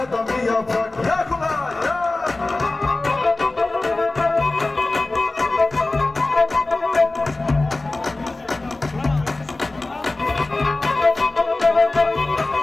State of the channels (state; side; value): quieter; right; 3.1 dB